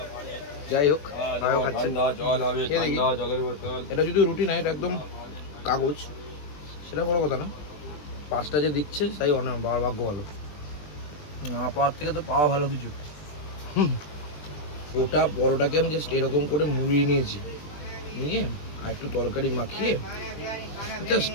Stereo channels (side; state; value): right; late; 20 ms